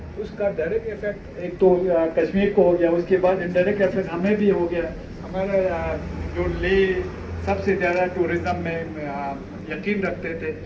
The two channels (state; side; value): identical; both; correlation 1.00